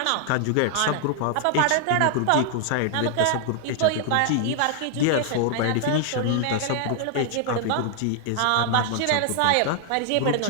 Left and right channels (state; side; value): different; both; correlation 0.00